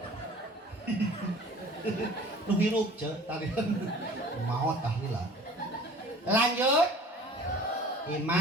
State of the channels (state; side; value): normal; both; correlation 0.46